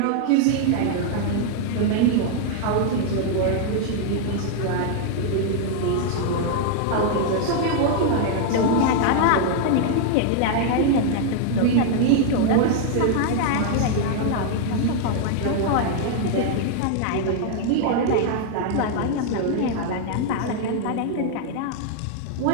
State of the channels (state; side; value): different; both; correlation 0.00